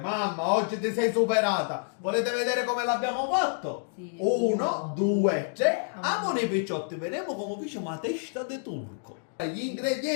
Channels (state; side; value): silent; right; digital silence